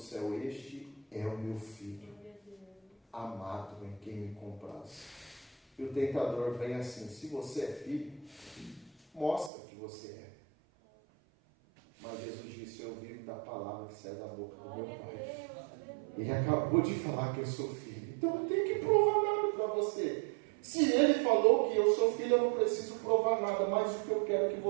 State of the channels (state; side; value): drops out; left; at 9.5 s